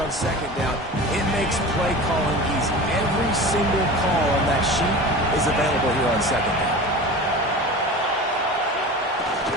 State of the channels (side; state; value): both; normal; correlation 0.34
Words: on second down, it makes play calling easy. Every single call on that sheet is available here on second down.